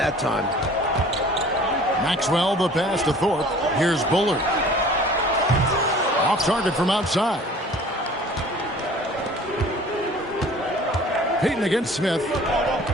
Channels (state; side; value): normal; both; correlation 0.48